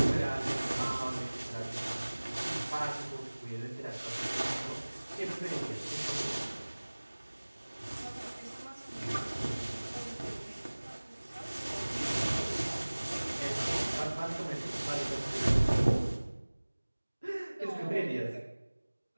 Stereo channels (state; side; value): inverted; both; correlation -1.00